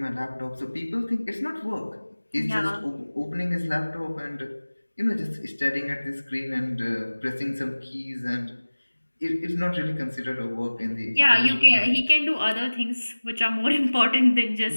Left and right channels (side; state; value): both; inverted; correlation -1.00